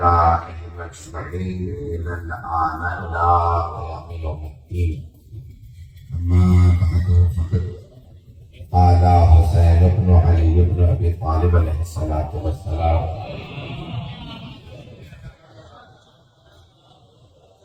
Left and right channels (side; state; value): both; identical; correlation 1.00